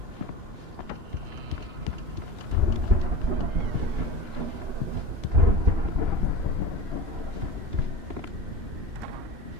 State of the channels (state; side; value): late; left; 2.9 ms